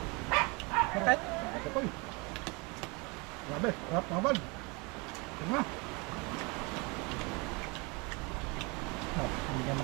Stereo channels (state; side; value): quieter; left; 28.4 dB